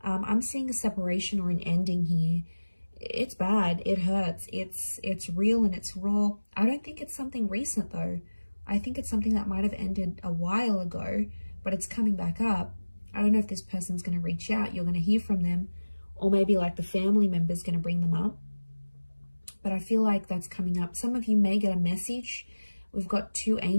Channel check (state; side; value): inverted; both; correlation -1.00